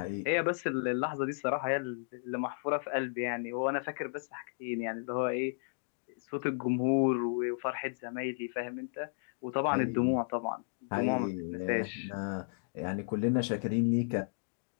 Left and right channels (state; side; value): silent; right; digital silence